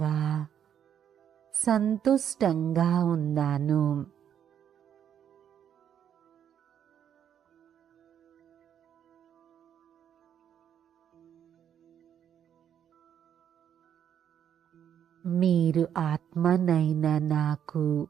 సంతుష్టంగా ఉన్నాను. మీరు ఆత్మనైన నాకు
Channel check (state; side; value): quieter; left; 9.2 dB